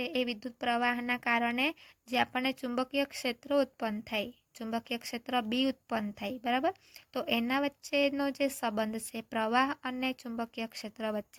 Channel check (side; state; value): both; identical; correlation 1.00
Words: એ વિદ્યુત પ્રવાહના કારણે જે આપણને ચુંબકીય ક્ષેત્ર ઉત્પન્ન થાય, ચુંબકીય ક્ષેત્ર બી ઉત્પન્ન થાય, બરાબર। તો એના વચ્ચેનો જે સંબંધ છે પ્રવાહ અને ચુંબકીય ક્ષેત્ર